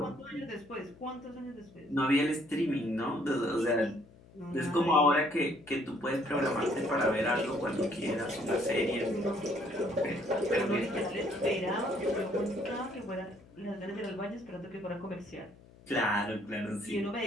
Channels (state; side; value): noise; left; hum, 24 dB below the sound